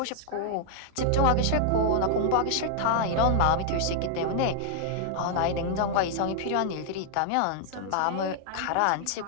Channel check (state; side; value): different; both; correlation 0.00